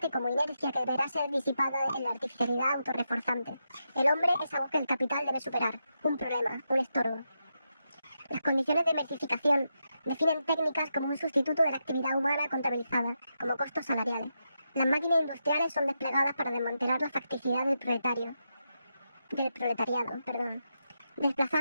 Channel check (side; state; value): both; inverted; correlation -0.85